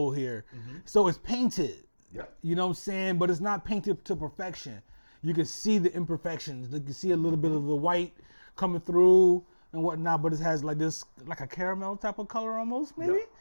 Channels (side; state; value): both; inverted; correlation -1.00